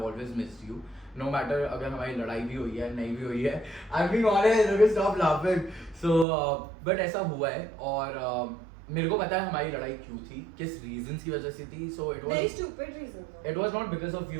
always missed you. No matter अगर हमारी लड़ाई भी हुई है, नहीं भी हुई है. I'm being honest, okay, stop laughing. So, but ऐसा हुआ है और मेरे को पता है हमारी लड़ाई क्यों थी, किस reasons की वजह से थी. So it was very stupid reasons. It was not because of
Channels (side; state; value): left; drops out; at 6.2 s